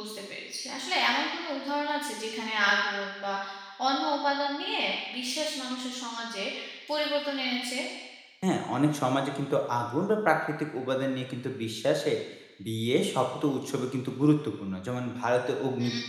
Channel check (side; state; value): both; identical; correlation 1.00